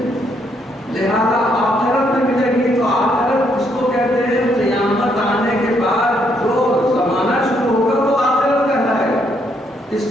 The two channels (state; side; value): normal; both; correlation 0.73